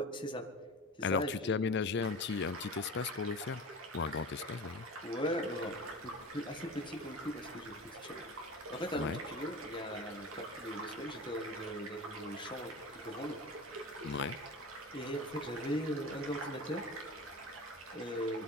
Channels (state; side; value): normal; both; correlation 0.32